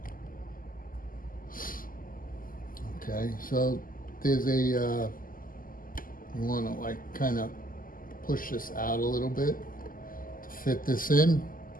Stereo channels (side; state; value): right; late; 0.41 ms